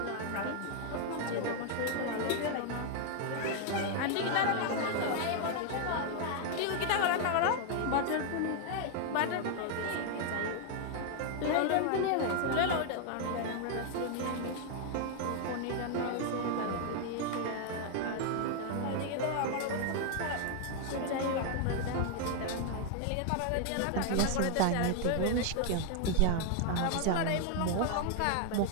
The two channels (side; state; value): both; different; correlation 0.00